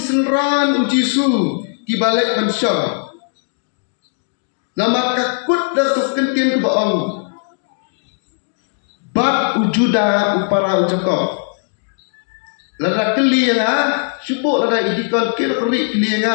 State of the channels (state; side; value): silent; right; digital silence